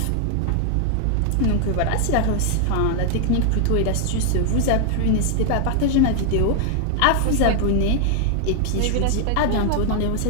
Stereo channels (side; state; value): both; different; correlation 0.00